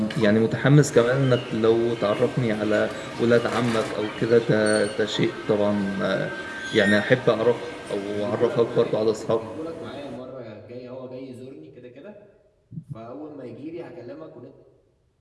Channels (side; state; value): both; identical; correlation 1.00